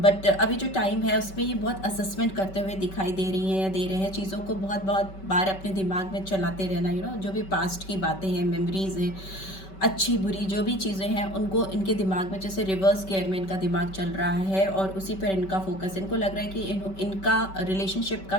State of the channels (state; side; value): late; right; 5.2 ms